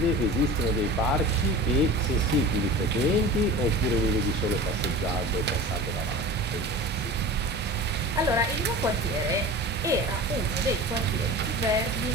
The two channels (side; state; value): both; normal; correlation 0.35